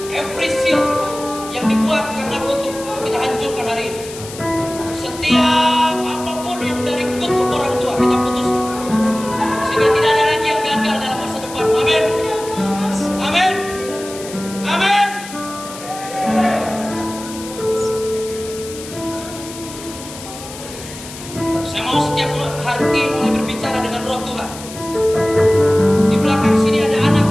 Every seal yang dibuat karena kutuk kita hancurkan hari ini. Setiap apapun yang dari kutuk orang tua kita putus, sehingga tidak ada lagi yang gagal dalam masa depan. Amin. Amin. Amin. Saya mau setiap hati mulai berbicara dengan roh Tuhan. Di belakang sini ada anak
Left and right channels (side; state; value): left; noise; hiss, 14 dB below the sound